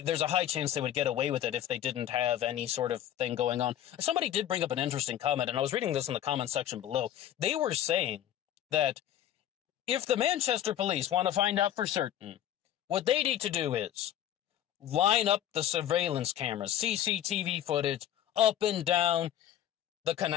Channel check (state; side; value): quieter; right; 11.4 dB